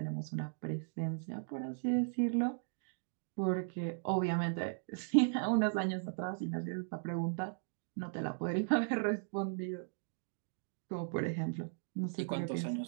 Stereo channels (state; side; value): silent; left; digital silence